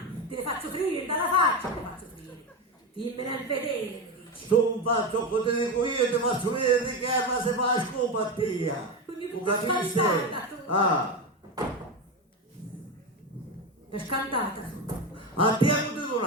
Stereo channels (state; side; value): normal; both; correlation 0.16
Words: Te le faccio friere, dalla faccia te le faccio friere. Dimmela in vedere, mi dici. Tu non faccio come ti dico io, ti faccio vedere di che ma se fa scopa tia. Quindi Tu per capisci? scantata tu. Per scantata tu. A te come tu non